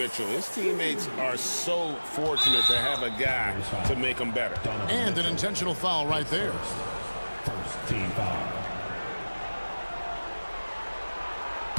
His teammates are so fortunate to have a guy to make them better. And an intentional foul right there. First team foul.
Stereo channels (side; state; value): both; inverted; correlation -1.00